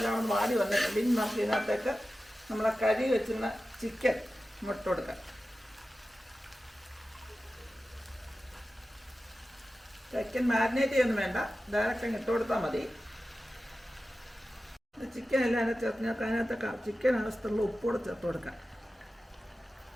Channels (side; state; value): both; normal; correlation 0.94